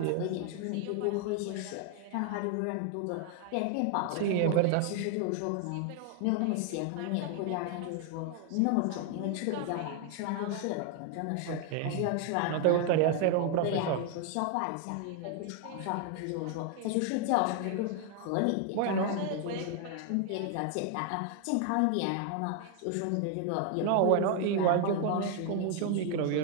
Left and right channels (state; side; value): different; both; correlation 0.00